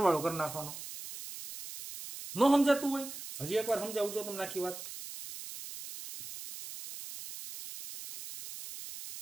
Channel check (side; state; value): right; noise; hiss, 11 dB below the sound